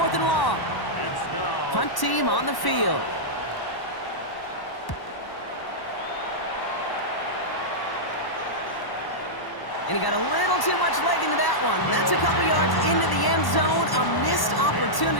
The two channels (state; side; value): late; right; 1.1 ms